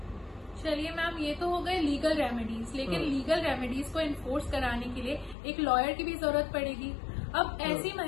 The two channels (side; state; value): right; drops out; at 5.4 s